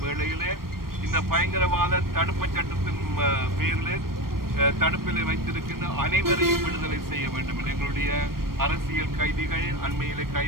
வேளையிலே இந்த பயங்கரவாத தடுப்பு சட்டத்தின் பேரில் தடுப்பில் வைத்திருக்கின்ற அனைவரையும் விடுதலை செய்ய வேண்டும் என்று எங்களுடைய அரசியல் கைதிகள் அண்மையிலே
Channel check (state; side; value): late; left; 0.93 ms